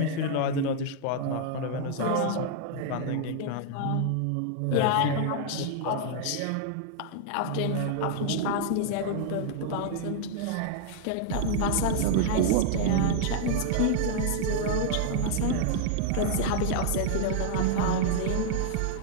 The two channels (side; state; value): both; different; correlation -0.01